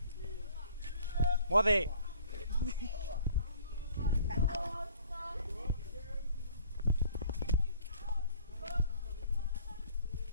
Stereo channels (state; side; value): inverted; both; correlation -0.54